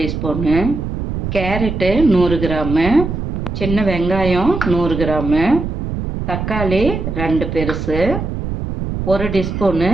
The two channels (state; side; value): noise; right; rumble, 5 dB below the sound